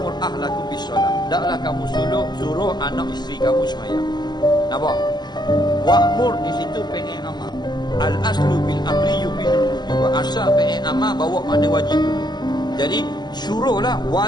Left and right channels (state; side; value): late; right; 0.21 ms